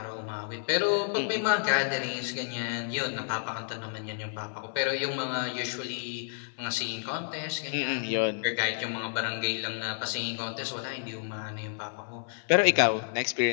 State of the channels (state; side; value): silent; right; 58 dB below the other